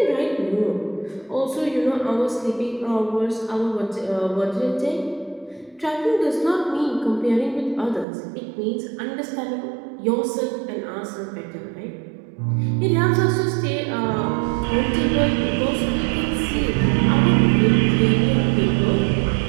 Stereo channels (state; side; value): drops out; left; at 8.1 s